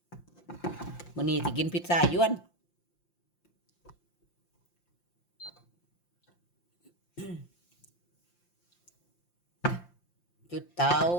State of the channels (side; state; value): right; late; 5.7 ms